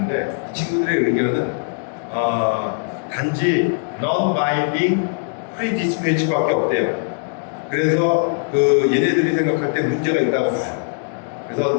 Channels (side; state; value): right; silent; digital silence